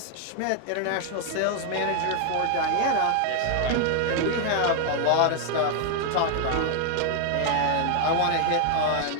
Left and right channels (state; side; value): different; both; correlation 0.00